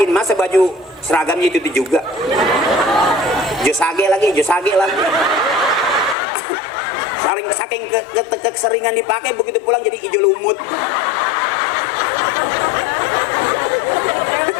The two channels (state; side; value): drops out; right; at 6.2 s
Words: masa baju seragamnya itu juga. Josage lagi. Saking keseringan dipakai, begitu pulang jadi hijau lumut.